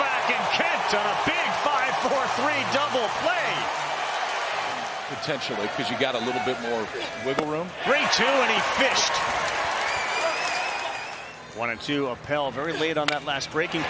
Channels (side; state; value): both; identical; correlation 1.00